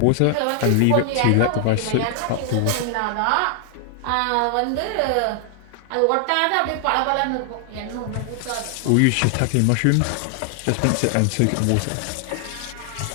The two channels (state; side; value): different; both; correlation 0.00